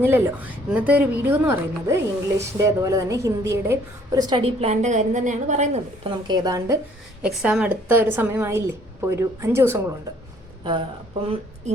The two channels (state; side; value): normal; both; correlation 0.60